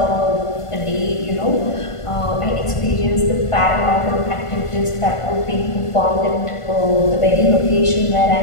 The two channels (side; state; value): right; late; 1.5 ms